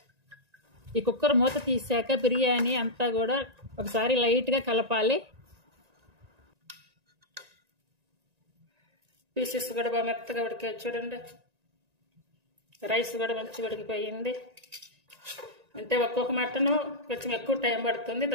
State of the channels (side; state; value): left; late; 1.9 ms